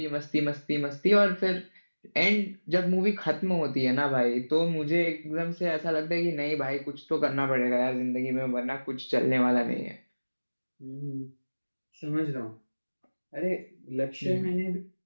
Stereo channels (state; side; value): inverted; both; correlation -1.00